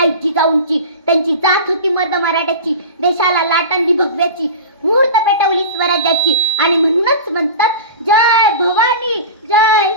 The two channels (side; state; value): both; inverted; correlation -0.32